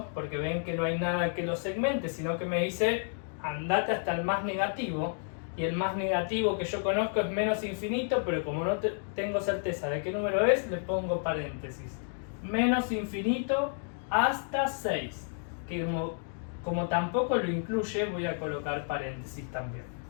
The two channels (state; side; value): silent; right; 57 dB below the other